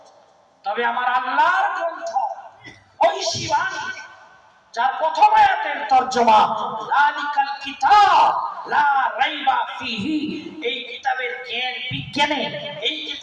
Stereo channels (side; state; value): both; identical; correlation 1.00